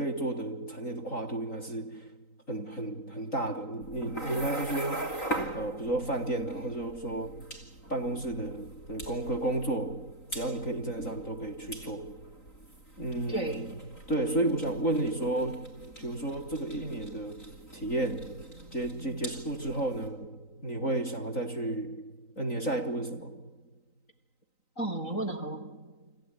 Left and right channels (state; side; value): late; right; 3.9 ms